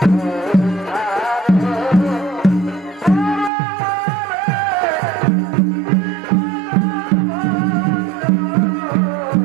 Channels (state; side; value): drops out; left; at 3.5 s